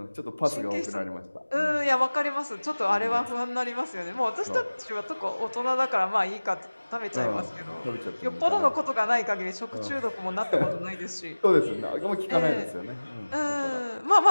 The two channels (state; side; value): inverted; both; correlation -1.00